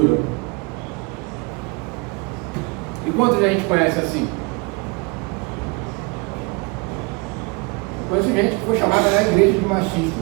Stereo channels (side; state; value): left; quieter; 29.2 dB